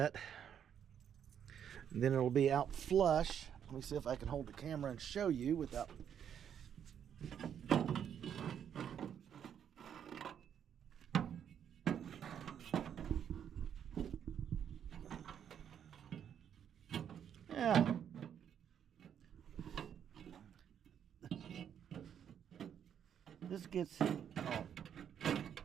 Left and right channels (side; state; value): left; quieter; 8.8 dB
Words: and then it'll be out flush. Let me see if I can hold the camera and show you without. Yeah. This gets, oh,